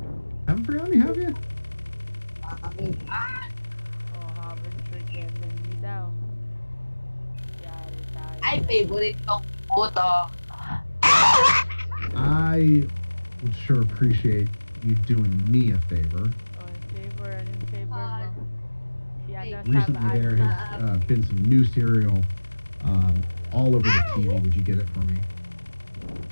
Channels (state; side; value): inverted; both; correlation -1.00